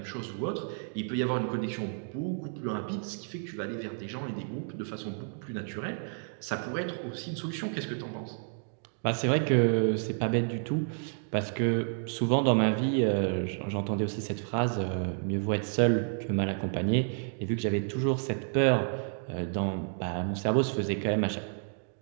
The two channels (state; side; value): silent; left; 57 dB below the other